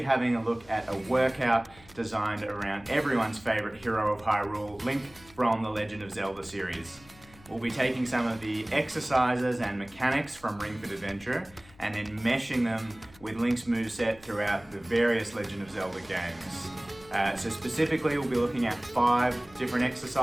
having a look at a workout designed around everyone's favourite hero of Hyrule, Link from the Legend of Zelda series. We'll be taking some of the exercises and mechanics from Ring Fit Adventure and then meshing them with Link's moveset throughout the various Legend of Zelda games. So specifically we'll be looking at 5 different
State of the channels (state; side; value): noise; left; hum, 24 dB below the sound